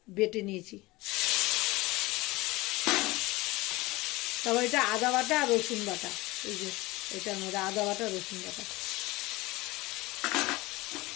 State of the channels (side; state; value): right; quieter; 21.0 dB